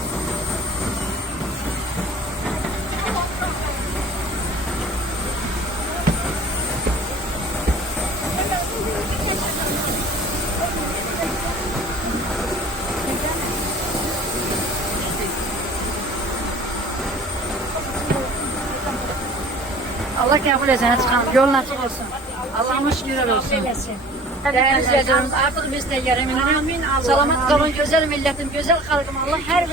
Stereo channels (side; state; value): both; normal; correlation 0.46